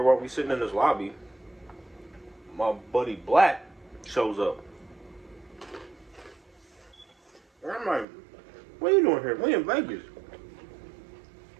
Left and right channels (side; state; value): left; drops out; at 8.1 s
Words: while we sitting in this lobby, my buddy Black shows up. And I'm like, what are you doing here? We in Vegas.